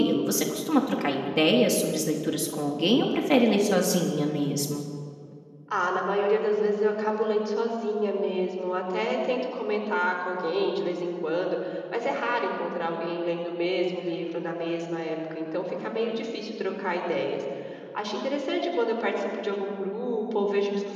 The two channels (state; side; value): identical; both; correlation 1.00